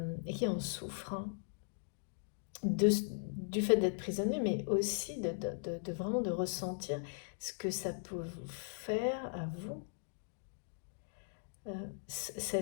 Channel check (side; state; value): right; silent; digital silence